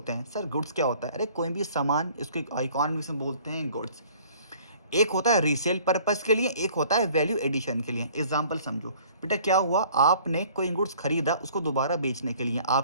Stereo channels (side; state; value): both; inverted; correlation -0.53